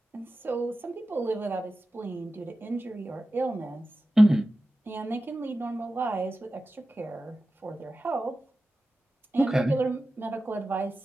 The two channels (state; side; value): normal; both; correlation 0.94